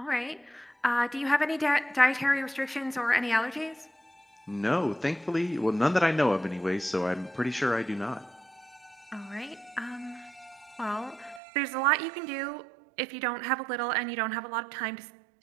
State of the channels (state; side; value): drops out; left; at 11.4 s